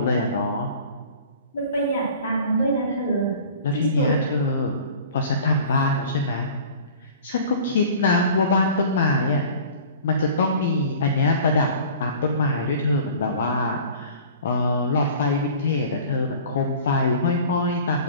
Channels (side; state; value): both; inverted; correlation -0.44